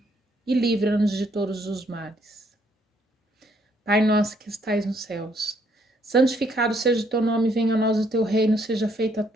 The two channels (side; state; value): both; normal; correlation 0.69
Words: e livra-nos de todos os males. Pai nosso que estais nos céus, santificado seja o teu nome, venha a nós o teu reino, seja feita a